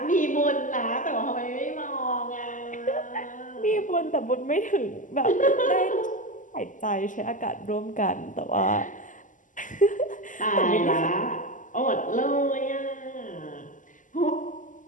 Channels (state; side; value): late; right; 0.37 ms